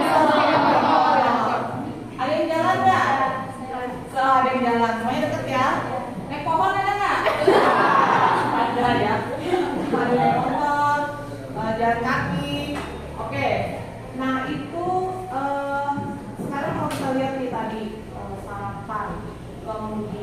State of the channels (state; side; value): identical; both; correlation 1.00